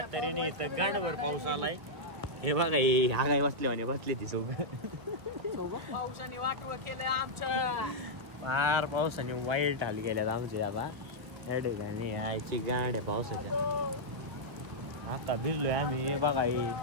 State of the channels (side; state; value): left; late; 1.6 ms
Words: तऱ्हेने इथं गाणभर पाऊस आलाय. हे बघा हे हा काय बसले ती सोबत. पावसाने वाटवं केलं आमचं. फार पावसाने वाईट हाल गेल्यात आमचे आता या ठिकाणी यायची गाडी पावसाच्या. आता भिजलोय आम्ही. हे बघा